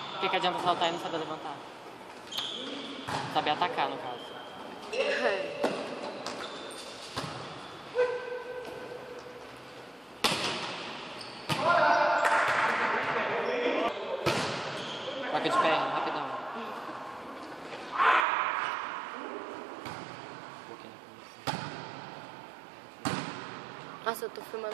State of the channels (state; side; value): drops out; left; at 18.2 s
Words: que adianta saltar e não saber levantar? Saber atacar, no caso. Troca de perna, rapidão. Nossa, eu tô